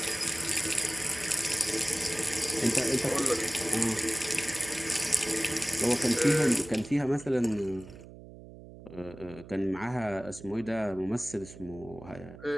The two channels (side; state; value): right; noise; hum, 17 dB below the sound